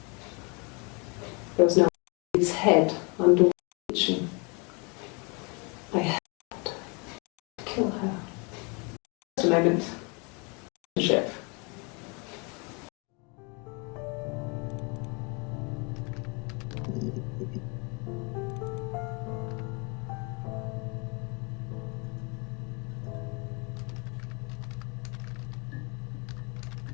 There was no its head under the kitchen. I had to kill her. Just a moment. Ship.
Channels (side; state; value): right; quieter; 31.7 dB